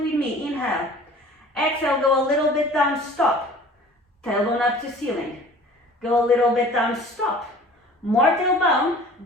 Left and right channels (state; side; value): normal; both; correlation 0.46